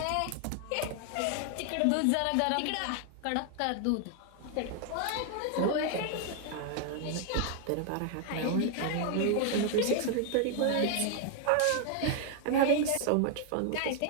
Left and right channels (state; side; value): different; both; correlation 0.00